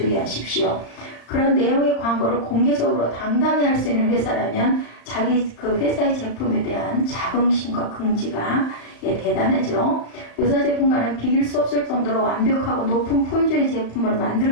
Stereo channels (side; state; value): right; late; 34 ms